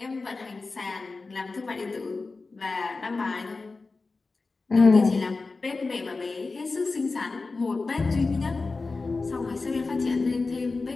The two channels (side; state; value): right; quieter; 3.9 dB